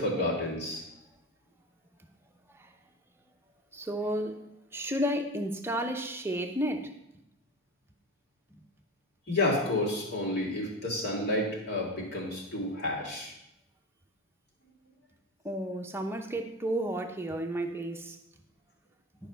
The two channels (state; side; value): normal; both; correlation 0.26